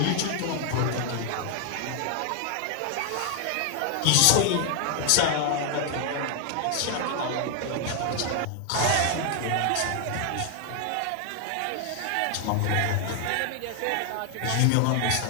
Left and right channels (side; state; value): both; different; correlation 0.00